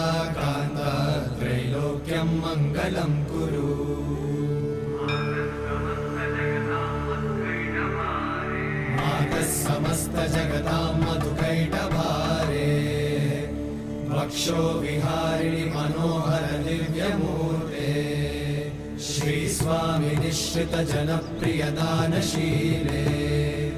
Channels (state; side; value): identical; both; correlation 1.00